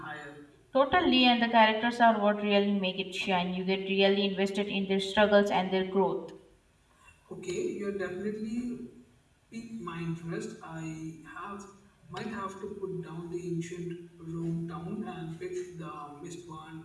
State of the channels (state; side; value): identical; both; correlation 1.00